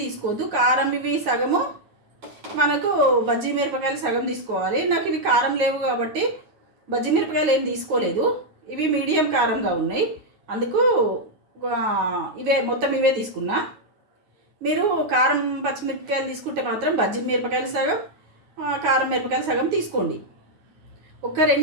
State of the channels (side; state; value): left; late; 9.4 ms